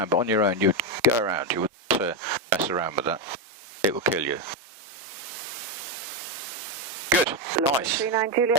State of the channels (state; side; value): normal; both; correlation 0.08